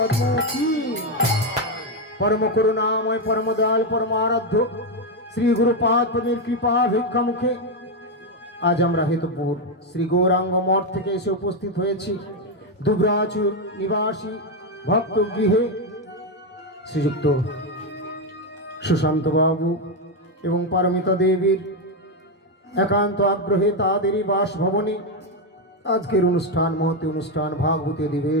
কি परम करुणामय परम दयाल परम आराध्य श्री गुरुपाद पদের কৃপা ভিক্ষা মুখে আজ আমরা হেতুপুর শ্রী গৌরাঙ্গ মঠ থেকে এসে উপস্থিত হয়েছি দুবরাজুর নিবাসী ভক্ত গৃহে শ্রীযুক্ত সুশান্ত বাবু এবং পারমিতা দেবীর একান্ত আগ্রহে তাদেরই বাসভবনে আজকের অনুষ্ঠান মহতি অনুষ্ঠান ভাগবতী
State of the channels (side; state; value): both; normal; correlation 0.06